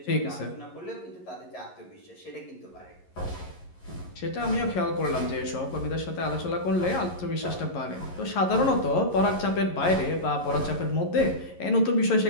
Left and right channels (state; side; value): late; right; 11 ms